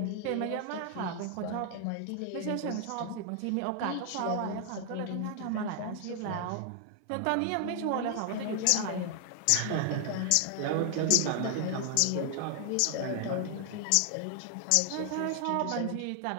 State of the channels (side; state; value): both; different; correlation 0.00